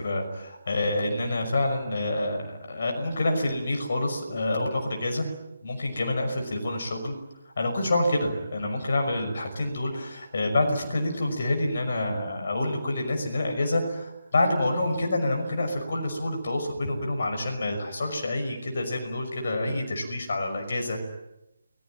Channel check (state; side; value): inverted; both; correlation -0.87